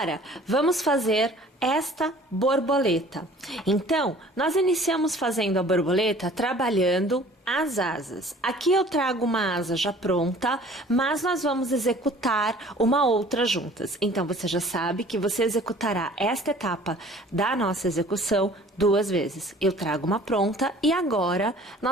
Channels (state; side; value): normal; both; correlation 0.50